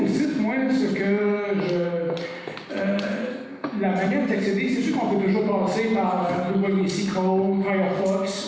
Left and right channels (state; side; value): identical; both; correlation 1.00